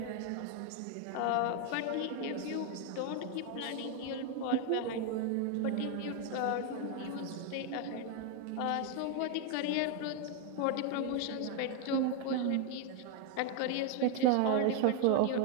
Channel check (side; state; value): both; different; correlation 0.01